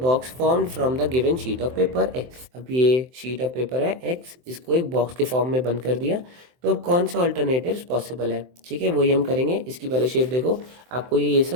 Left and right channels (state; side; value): late; left; 23 ms